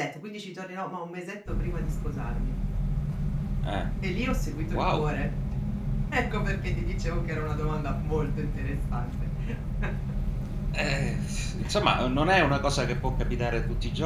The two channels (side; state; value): both; identical; correlation 1.00